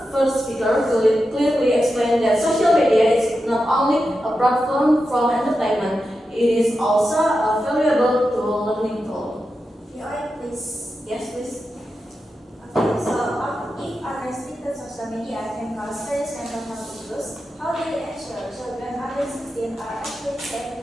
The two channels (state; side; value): normal; both; correlation 0.90